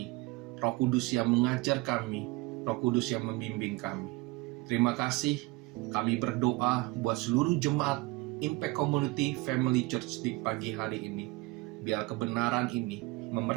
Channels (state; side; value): quieter; left; 22.7 dB